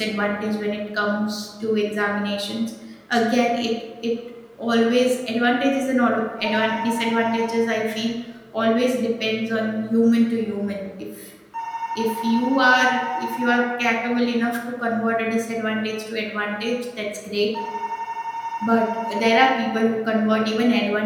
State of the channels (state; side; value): identical; both; correlation 1.00